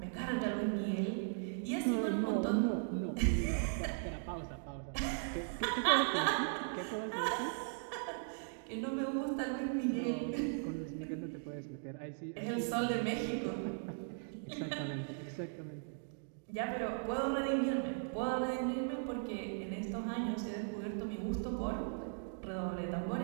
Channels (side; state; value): left; silent; digital silence